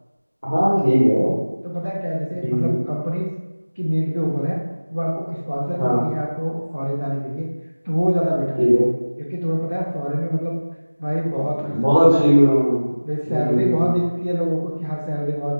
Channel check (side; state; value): both; inverted; correlation -1.00